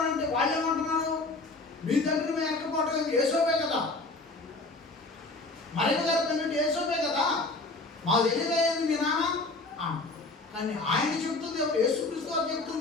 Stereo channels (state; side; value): quieter; right; 3.2 dB